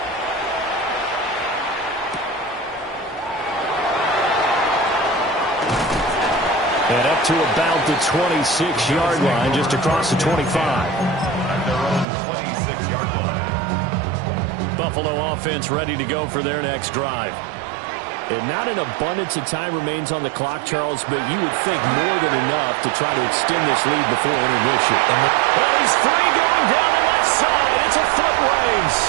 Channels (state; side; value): drops out; left; at 12.1 s